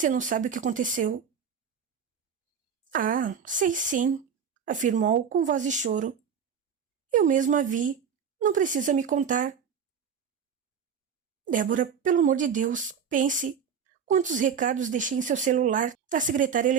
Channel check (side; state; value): left; quieter; 7.1 dB